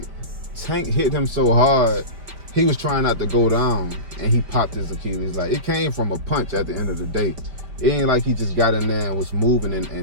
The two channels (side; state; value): left; late; 5.1 ms